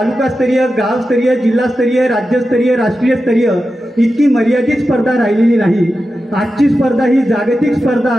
गावस्तरीय, जिल्हास्तरीय, राज्यस्तरीय, राष्ट्रीय स्तरीय इतकी मर्यादित स्पर्धा राहिलेली नाही। आजची स्पर्धा ही जागतिक स्पर्धा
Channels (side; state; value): both; normal; correlation 0.91